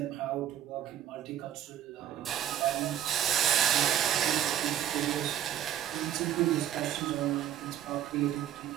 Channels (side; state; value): left; quieter; 11.0 dB